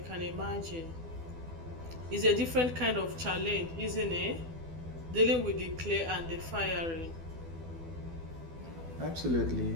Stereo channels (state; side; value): late; left; 12 ms